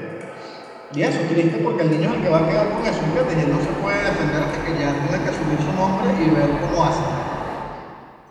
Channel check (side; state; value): both; identical; correlation 1.00